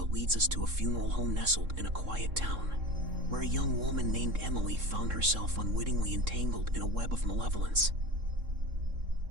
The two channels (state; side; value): late; left; 3.7 ms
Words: leads us to a funeral home nestled in a quiet town, where a young woman named Emily found herself unwittingly entangled in a web of malevolence.